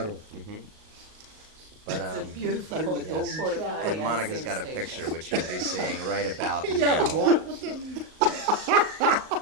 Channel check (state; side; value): late; left; 38 ms